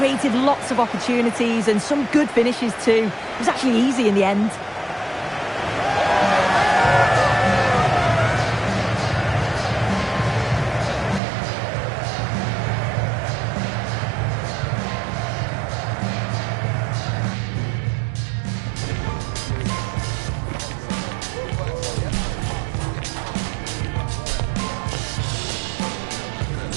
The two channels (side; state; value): left; drops out; at 11.2 s